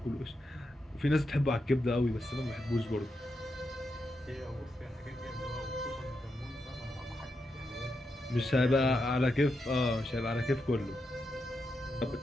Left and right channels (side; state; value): both; normal; correlation 0.85